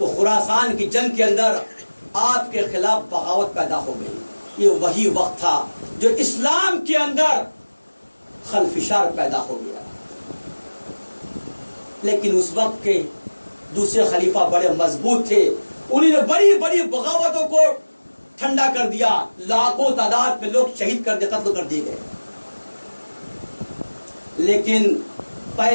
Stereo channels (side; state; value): both; inverted; correlation -1.00